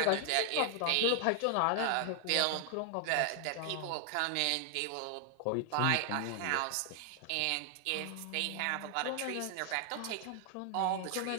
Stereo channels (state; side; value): different; both; correlation 0.00